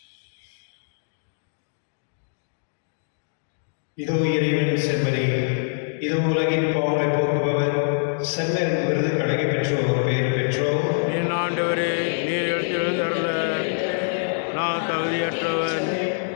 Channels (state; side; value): silent; right; digital silence